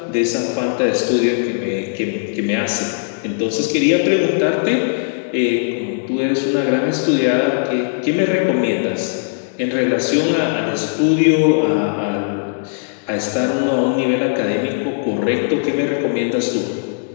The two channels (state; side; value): silent; right; digital silence